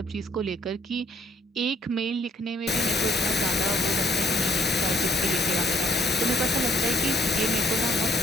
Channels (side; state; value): both; normal; correlation 0.65